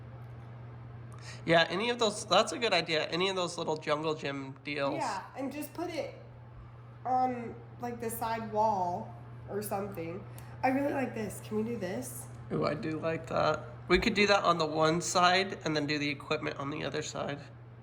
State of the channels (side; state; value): both; identical; correlation 1.00